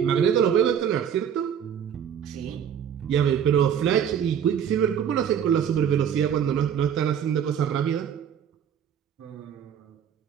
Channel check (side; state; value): left; quieter; 8.6 dB